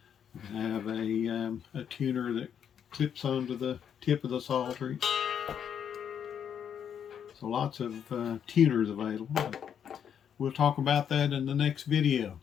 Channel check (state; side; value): quieter; right; 8.4 dB